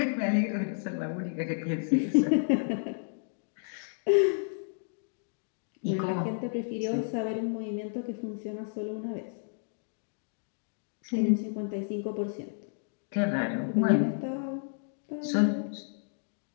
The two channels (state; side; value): silent; right; digital silence